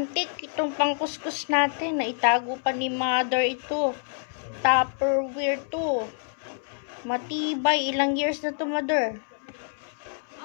itong pangkuskus natin. Naitago pa ni mother ito. Tupperware to. Matibay. Ilang years na to, mother?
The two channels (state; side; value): silent; right; 60 dB below the other